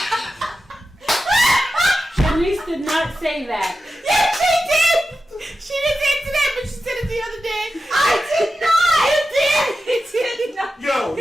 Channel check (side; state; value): both; normal; correlation 0.91